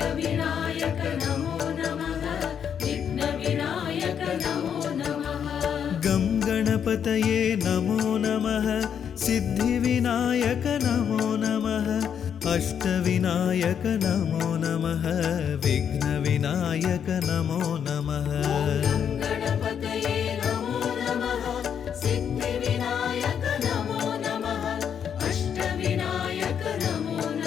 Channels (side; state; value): right; quieter; 8.1 dB